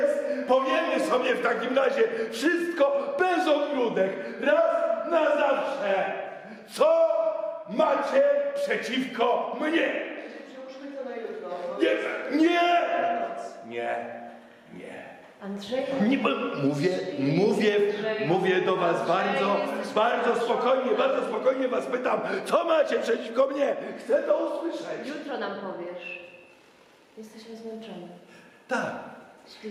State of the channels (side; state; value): both; identical; correlation 1.00